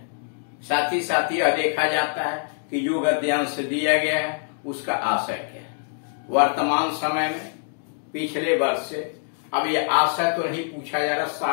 साथ ही साथ यह देखा जाता है कि जो गद्यांश दिया गया है उसका आशय क्या है। वर्तमान समय में पिछले वर्ष से अब यह आशय तो नहीं पूछा जा रहा,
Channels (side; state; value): right; silent; digital silence